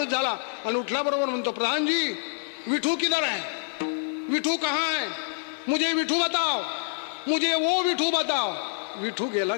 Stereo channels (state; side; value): silent; right; digital silence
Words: झाला आणि उठल्याबरोबर म्हणतो, प्रधान जी विठू किधर है? विठू कहाँ है? मुझे विठू बताओ, मुझे वो विठू बताओ. विठू गेला